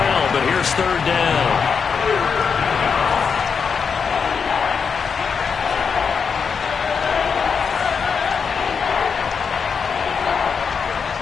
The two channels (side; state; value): right; quieter; 6.0 dB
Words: but here's 3rd down.